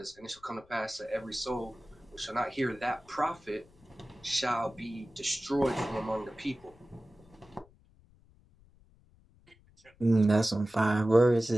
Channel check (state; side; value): noise; left; rumble, 29 dB below the sound